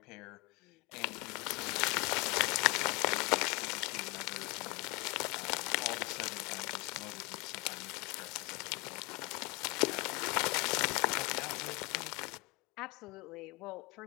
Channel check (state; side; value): quieter; right; 27.6 dB